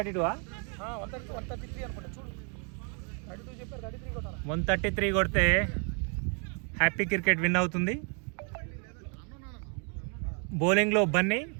133 అనుకుంటా. చూడు 32 చెప్పారు, 33 కొట్టాలి. 133 కొడితే హ్యాపీ క్రికెట్ విన్ అవుతుంది. బౌలింగ్లో బన్నీ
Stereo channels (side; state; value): left; quieter; 38.9 dB